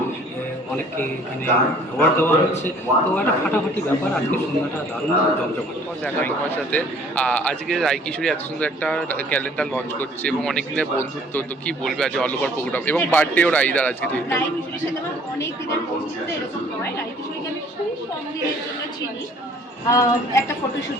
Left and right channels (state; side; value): normal; both; correlation 0.55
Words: অনেককে এখানে অ্যাওয়ার্ড দেওয়া হচ্ছে, তো একটা ফাটাফাটি ব্যাপার। আজকের সন্ধ্যাটা দারুণ জমজমাট। দেখা তোমার সাথে আজকে রাই কিশোরী এত সুন্দর একটা ক্যালেন্ডার লঞ্চ করছে এবং অনেক দিনের বন্ধুত্ব, তো কি বলবে আজ অল ওভার প্রোগ্রাম এবং বার্থডেও রাইদার আজকে? রাই কিশোরীর সাথে আমার অনেক দিনের বন্ধুত্ব এরকম হয়। রাই কিশোরীকে আমি খুব কম দিনের জন্য চিনি। একটা